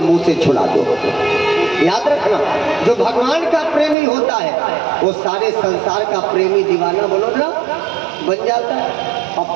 मुंह से छुड़ा दो। याद रखना, जो भगवान का प्रेमी होता है वो सारे संसार का प्रेमी दीवाना बोलो ना बन जाता है। अब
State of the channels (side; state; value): left; drops out; at 4.0 s